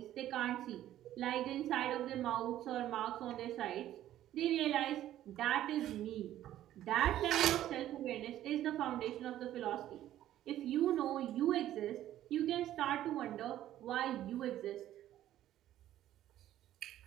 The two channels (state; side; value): quieter; left; 12.8 dB